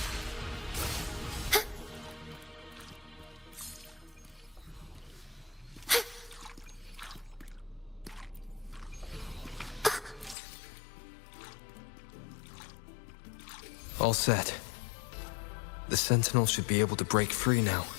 All set. The Sentinel should be able to break free now.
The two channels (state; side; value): drops out; right; at 10.4 s